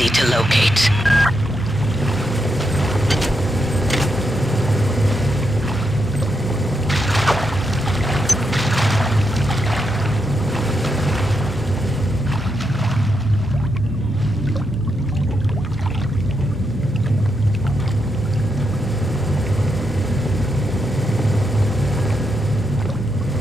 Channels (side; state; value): both; normal; correlation 0.82